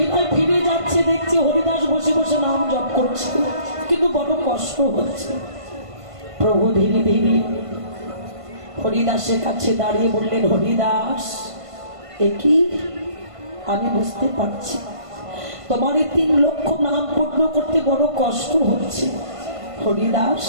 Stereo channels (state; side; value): late; left; 1.5 ms